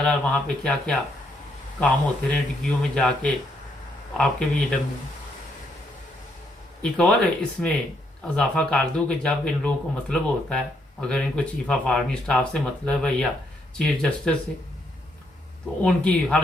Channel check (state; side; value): normal; both; correlation 0.74